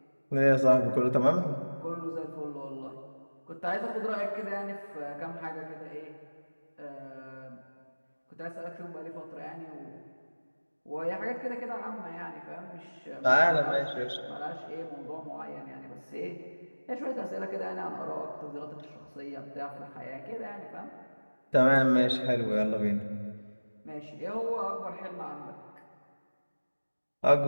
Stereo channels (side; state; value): both; inverted; correlation -1.00